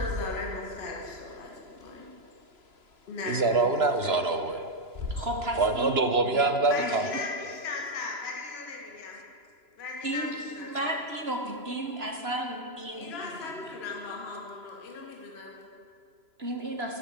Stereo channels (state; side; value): late; left; 3.0 ms